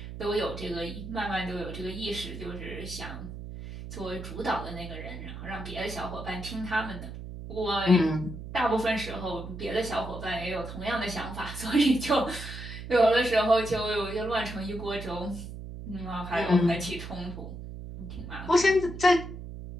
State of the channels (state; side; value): noise; right; hum, 10 dB below the sound